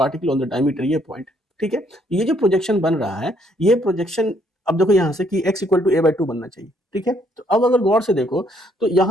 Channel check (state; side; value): normal; both; correlation 0.68